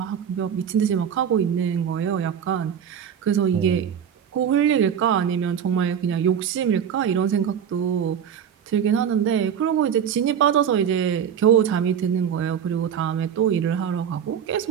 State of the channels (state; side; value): quieter; left; 8.4 dB